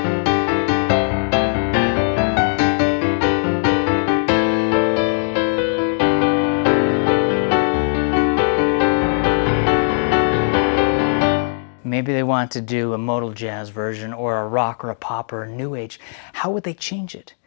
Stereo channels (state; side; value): silent; right; digital silence